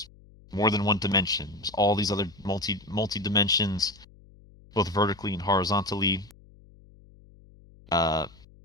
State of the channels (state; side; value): noise; left; hum, 25 dB below the sound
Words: more than one dimension. There's all these other multi dimensions, both vertically and horizontally. Uh,